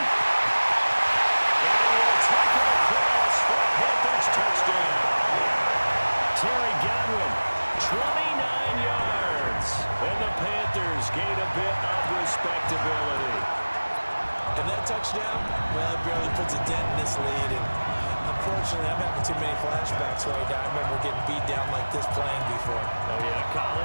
And he'll take it across for a Panthers touchdown. Terry Godwin, 29 yards. And the Panthers gain a bit of respectability. And that touchdown, well, it barely puts a dent in this lead. And unfortunately, I'm having too many flashbacks right now. I remember getting beat down like this playing before. Oh, yeah,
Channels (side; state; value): both; inverted; correlation -1.00